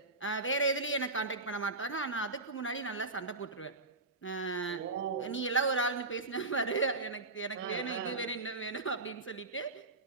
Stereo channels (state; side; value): quieter; left; 3.2 dB